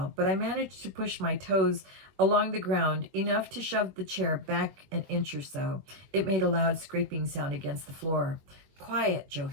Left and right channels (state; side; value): late; left; 22 ms